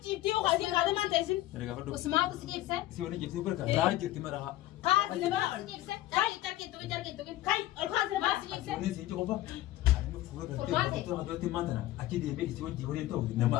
jibtii ukaasii kaadee maan teessin? Usmaatu si jibse? Si wani jibsi barka raa jirti maraha. Kaasi nama Si jibse? Jarki tukin. kai ol kaasi nama Si jibse? Ni si qofa. Ani fuwe gartee fuutura hadootti maantana achi deemee isi wajji waliin ta'u nama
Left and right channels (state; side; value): quieter; right; 15.5 dB